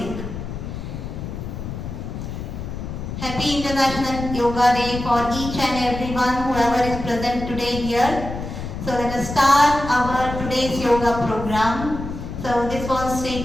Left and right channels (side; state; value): left; noise; rumble, 7 dB below the sound